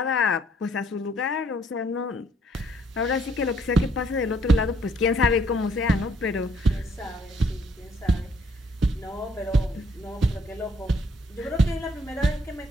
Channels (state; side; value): normal; both; correlation 0.66